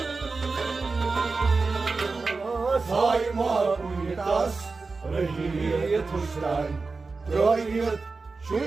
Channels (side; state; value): left; quieter; 4.1 dB